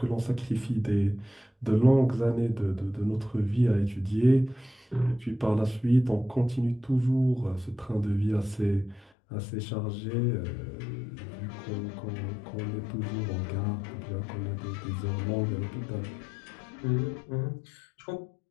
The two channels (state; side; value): drops out; right; at 9.1 s